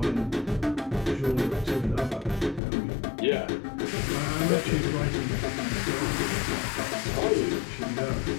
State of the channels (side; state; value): right; drops out; at 2.6 s